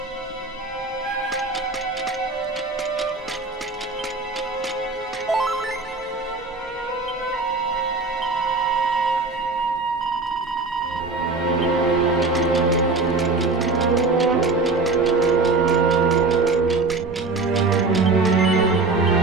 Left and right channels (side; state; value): left; quieter; 3.7 dB